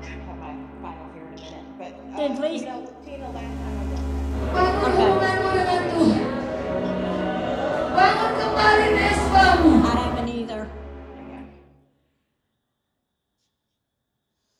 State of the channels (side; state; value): both; identical; correlation 1.00